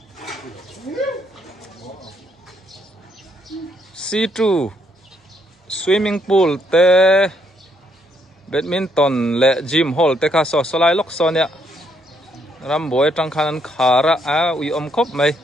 C2 swimming pool te badminton le gym hall te kha so solai lok sonia ram boy tang khan khara ui om khop mai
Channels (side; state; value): both; normal; correlation 0.73